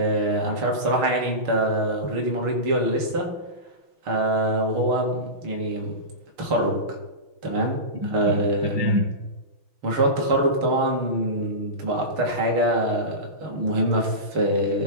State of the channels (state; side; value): late; left; 6.2 ms